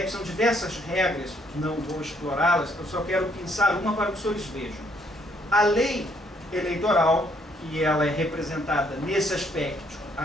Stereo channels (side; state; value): both; normal; correlation 0.69